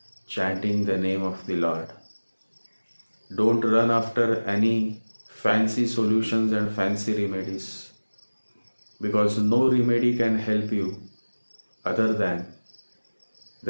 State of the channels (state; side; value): inverted; both; correlation -1.00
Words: chanting the name of the Lord. Don't run after any fancy solutions and fancy remedies, because no remedy can help you other than